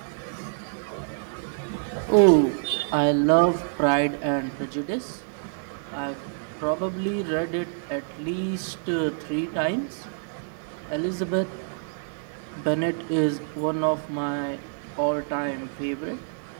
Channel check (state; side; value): silent; left; 60 dB below the other